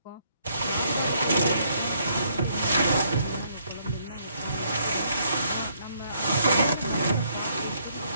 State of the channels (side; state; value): both; inverted; correlation -0.70